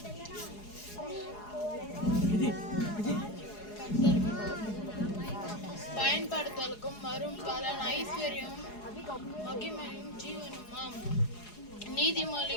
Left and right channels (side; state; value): right; late; 4.8 ms